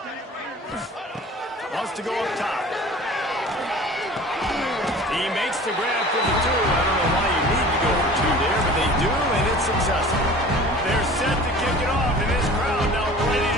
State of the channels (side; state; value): both; normal; correlation 0.43